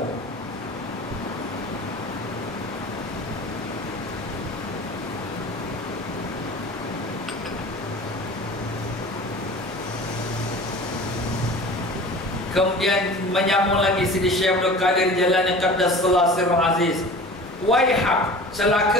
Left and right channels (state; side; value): normal; both; correlation 0.40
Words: Kemudian menyambung lagi Sidi Syekh Abdul Qadir Jalani Qaddasallahu Sirrul Aziz, waihak,